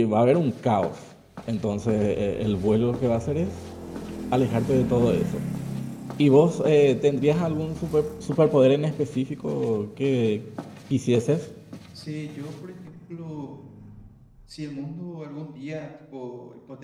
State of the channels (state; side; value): identical; both; correlation 1.00